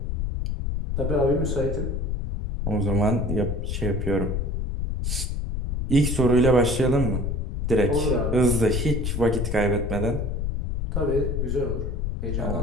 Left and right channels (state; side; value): noise; left; rumble, 1 dB below the sound